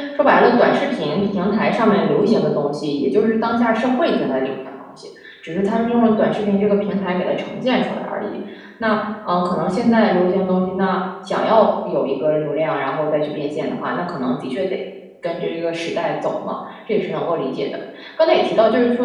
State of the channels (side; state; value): both; identical; correlation 1.00